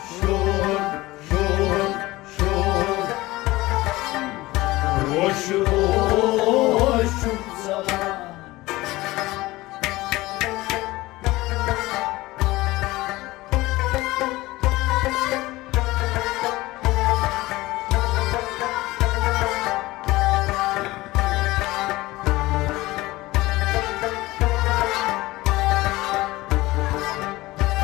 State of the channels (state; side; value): quieter; right; 19.3 dB